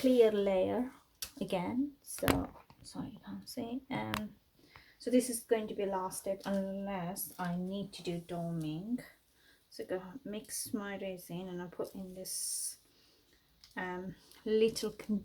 layer again, so sorry you can't see. So this is going to be last step unless I need to do doming. So go mix my resin and I put in this little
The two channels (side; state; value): both; identical; correlation 1.00